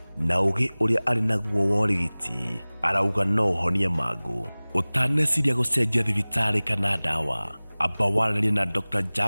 na ũgĩ ũrĩa arĩ naguo wa ũrigiti. Arauga no ũhonie mangũ. Ũtaneciria gũcenjia thibitarĩ kana ndawa, amba waranĩrie na Dr.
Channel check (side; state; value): both; inverted; correlation -1.00